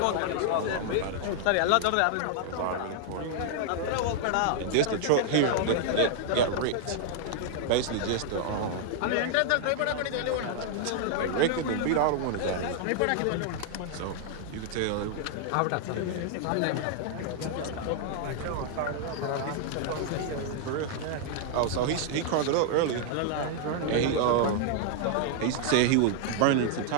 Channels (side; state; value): both; different; correlation 0.00